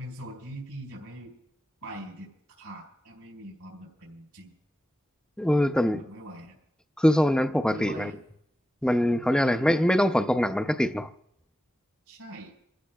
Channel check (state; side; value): normal; both; correlation 0.93